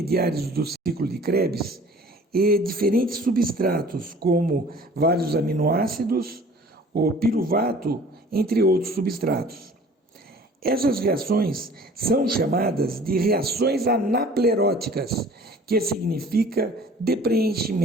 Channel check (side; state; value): both; normal; correlation 0.49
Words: do ciclo de Krebs e diferentes substratos, como vários aminoácidos, o piruvato, entre outros substratos. Essas reações são chamadas de reações anapleróticas, que significa